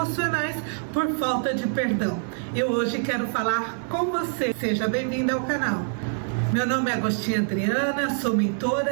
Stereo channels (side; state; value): left; silent; 62 dB below the other